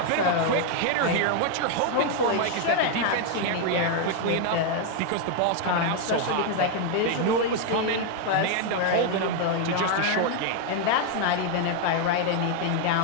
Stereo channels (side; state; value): both; different; correlation 0.01